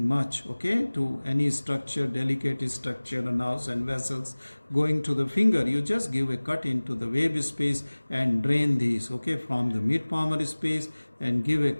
much, okay, to any structure, delicate structure, nerves and vessels going to the finger. You just give a cut into the web space and drain these, okay, from the mid palmar space, and give a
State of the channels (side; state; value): both; inverted; correlation -1.00